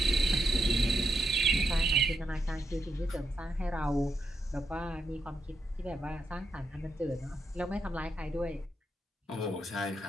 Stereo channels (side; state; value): both; normal; correlation 0.82